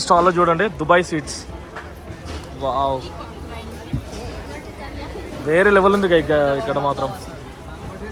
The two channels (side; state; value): both; identical; correlation 1.00